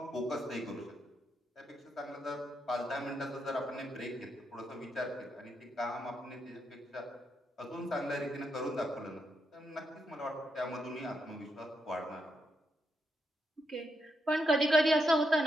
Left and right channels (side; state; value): both; normal; correlation 0.81